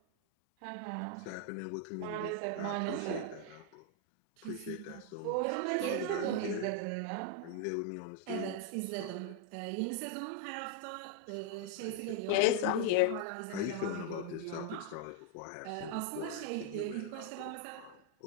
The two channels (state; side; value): different; both; correlation 0.01